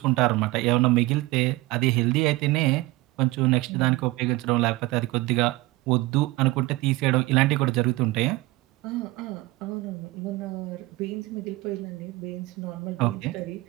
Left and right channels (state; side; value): quieter; left; 20.7 dB